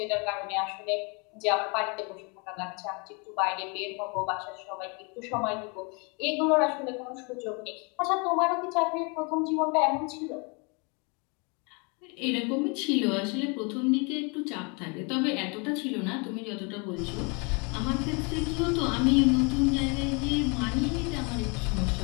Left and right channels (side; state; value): right; quieter; 32.5 dB